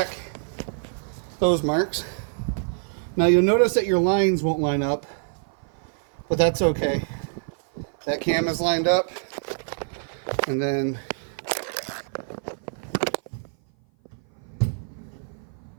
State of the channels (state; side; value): silent; left; 56 dB below the other